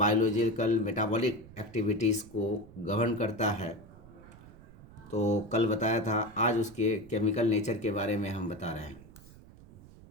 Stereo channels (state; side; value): noise; right; rumble, 20 dB below the sound